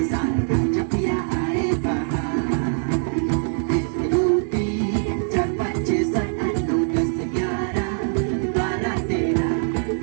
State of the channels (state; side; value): silent; left; 64 dB below the other